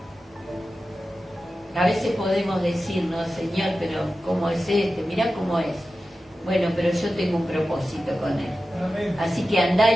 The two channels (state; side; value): normal; both; correlation 0.93